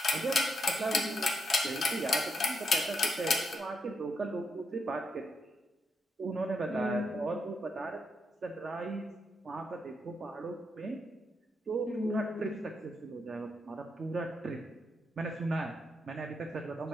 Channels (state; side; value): normal; both; correlation 0.81